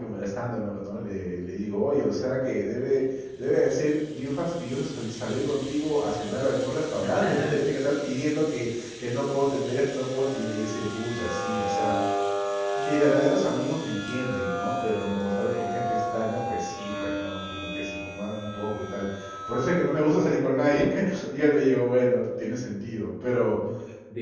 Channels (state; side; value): identical; both; correlation 1.00